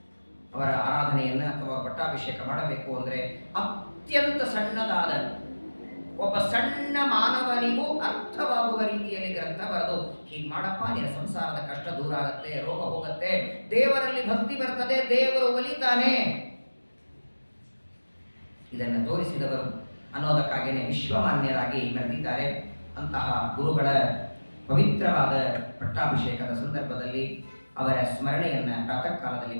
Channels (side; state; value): both; inverted; correlation -1.00